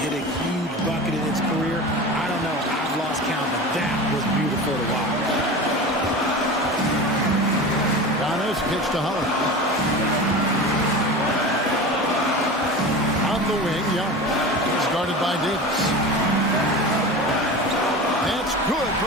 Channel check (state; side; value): normal; both; correlation 0.31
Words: hit a huge bucket in his career? I don't know. I've lost count, but that was beautiful to watch. Giannis pitch to Holiday. On the wing, Giannis is guarded by Davis. That's good